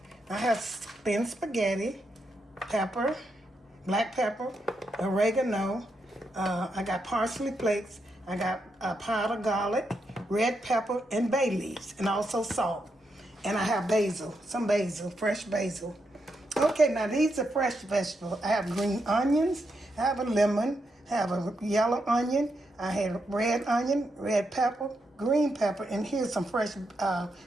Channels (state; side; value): normal; both; correlation 0.83